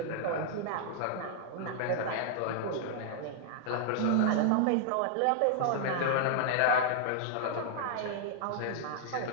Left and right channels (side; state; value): both; different; correlation 0.00